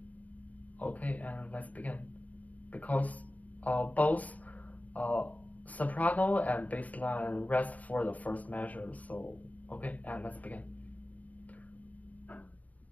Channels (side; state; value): right; late; 0.073 ms